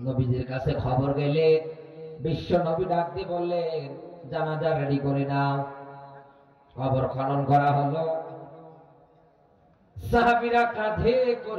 কাছে খবর গেলে বিশ্ব নবী ডাক দিয়ে বললেন, জানাজা রেডি করে নাও। কবর খনন করা হলো, সাহাবীরা কাঁধে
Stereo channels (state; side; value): identical; both; correlation 1.00